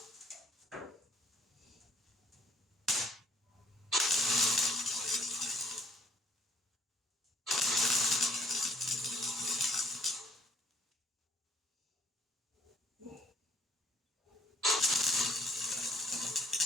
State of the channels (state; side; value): normal; both; correlation 0.62